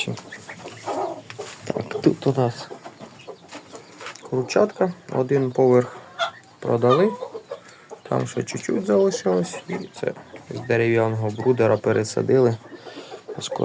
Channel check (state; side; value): identical; both; correlation 1.00